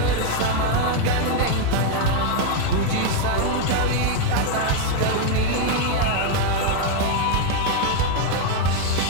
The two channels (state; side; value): different; both; correlation 0.01